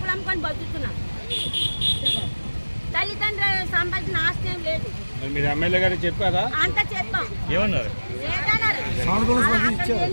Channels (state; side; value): inverted; both; correlation -1.00